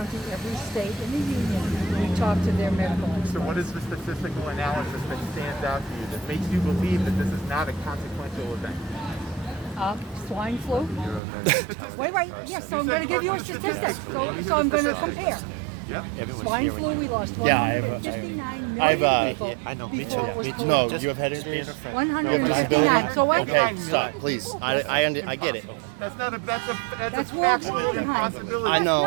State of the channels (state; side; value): drops out; left; at 11.2 s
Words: every state in the union. We talk to their medical experts. So what is the statistical analysis that stands out to you that makes you believe that this is not a consequential event? Swine flu. Statistics. Wait, yes, so I'm You going said to give you a statistics. statistic. Let me hear So I'm the going to statistics. compare. Yep. Swine flu, we lost Yeah, I have- 159 I've, million people I know, me before too, it was me too. No, polluted. you have head injuries? 159. So what? Okay, stop, please. I get it. That's not a. That's a. That's That's a World factual War behind. impossibility. I know.